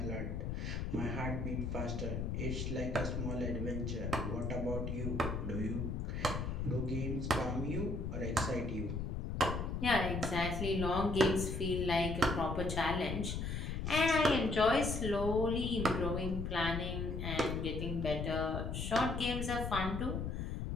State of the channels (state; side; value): noise; left; rumble, 3 dB below the sound